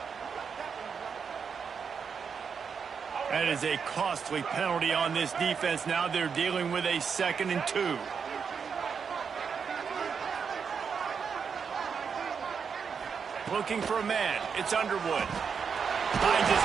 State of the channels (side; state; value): left; quieter; 6.3 dB